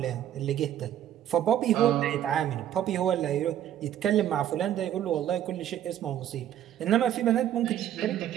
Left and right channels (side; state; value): left; quieter; 11.1 dB